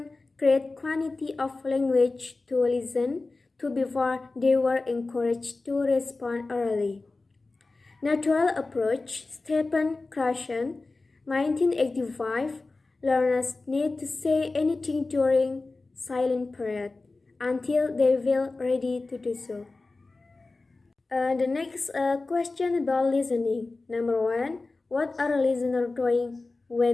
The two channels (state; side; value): quieter; right; 3.4 dB